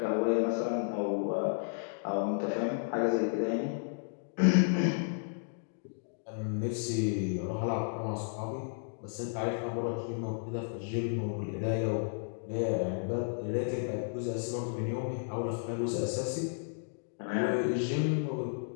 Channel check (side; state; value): right; silent; digital silence